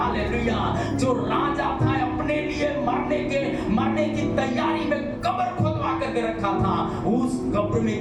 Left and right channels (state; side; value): identical; both; correlation 1.00